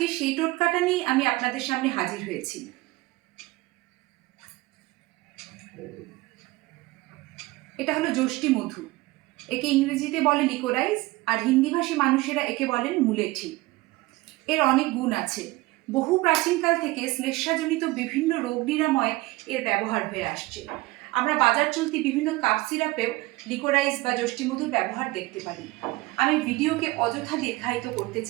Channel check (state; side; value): quieter; left; 20.8 dB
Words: সেই টোটকাটা নিয়ে আমি আপনাদের সামনে হাজির হয়েছি। এটা হলো যষ্টি মধু। একে ইংরেজিতে বলে লিকোরাইজ, আর হিন্দিভাষী মানুষেরা একে বলেন মুলেঠি। এর অনেক গুণ আছে। বহু প্রাচীনকাল থেকে শ্লেষ্মাজনিত বিভিন্ন রোগ নিরাময়ে এর ব্যবহার হয়ে আসছে। আমরা বাজার চলতি বিভিন্ন কাপ সিরাপেও লিকোরাইজ বা যষ্টিমধুর ব্যবহার দেখতে পারি। আমি ভিডিওকে অযথা দীর্ঘায়িত করতে